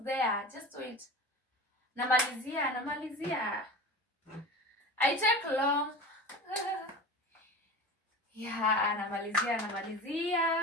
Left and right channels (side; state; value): both; normal; correlation 0.32